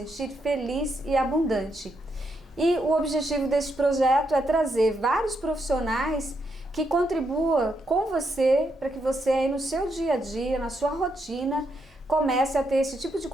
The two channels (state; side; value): normal; both; correlation 0.80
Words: feliz e abundante. E o objetivo deste projeto é trazer vários profissionais que contribuam com você, para que você aí no seu dia a dia, na sua rotina, comece a ter esse tipo de